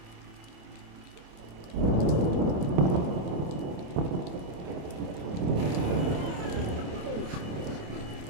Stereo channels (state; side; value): late; left; 27 ms